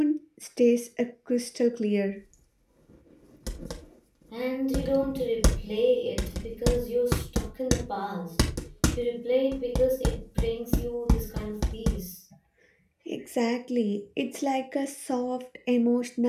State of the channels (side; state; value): both; identical; correlation 1.00